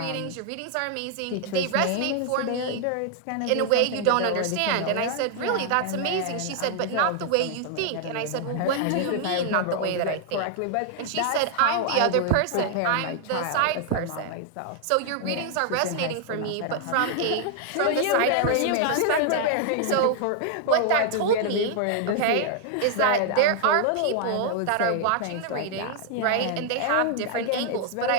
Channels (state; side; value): different; both; correlation 0.00